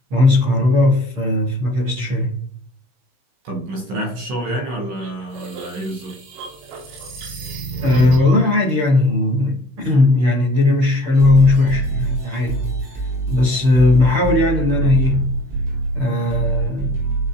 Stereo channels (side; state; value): left; late; 16 ms